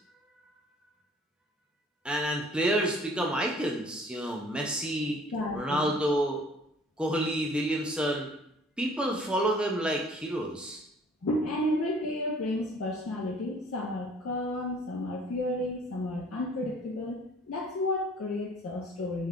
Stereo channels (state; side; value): normal; both; correlation 0.54